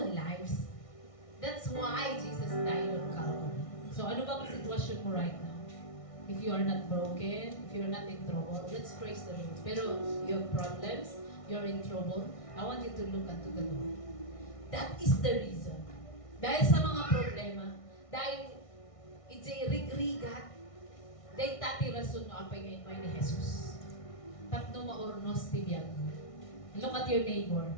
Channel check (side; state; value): right; late; 1.6 ms